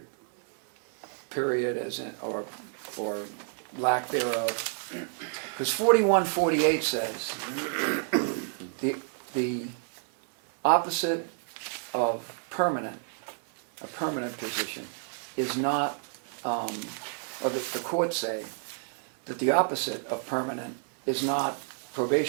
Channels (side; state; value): left; silent; 58 dB below the other